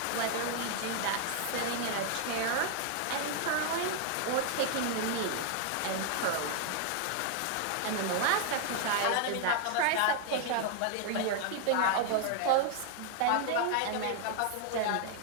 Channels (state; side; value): different; both; correlation 0.00